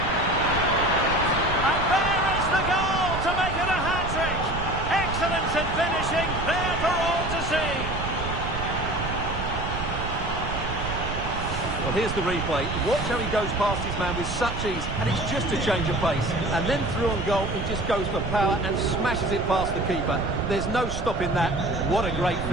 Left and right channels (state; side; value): noise; right; rumble, 6 dB below the sound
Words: And there is the goal to make it a hat-trick. Excellence in finishing, there for all to see. Well, here's the replay. Watch how he goes past his man with such ease, and it's just a change of pace. And then through on goal, he just goes for power and smashes it past the keeper. There's no stopping that. What a great